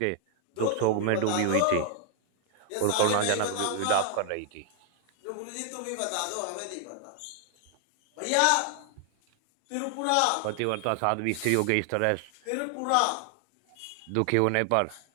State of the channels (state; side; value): different; both; correlation 0.00